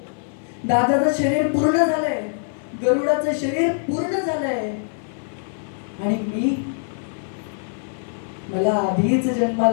दादाचं शरीर पूर्ण झालंय, गरुडाचं शरीर पूर्ण झालंय आणि मला आधीच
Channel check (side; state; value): right; silent; 55 dB below the other